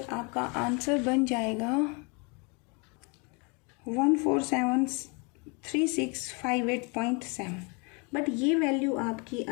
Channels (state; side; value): quieter; right; 32.3 dB